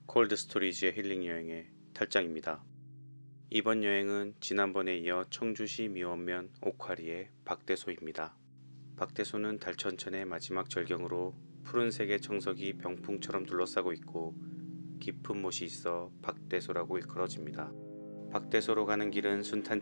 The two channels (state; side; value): inverted; both; correlation -1.00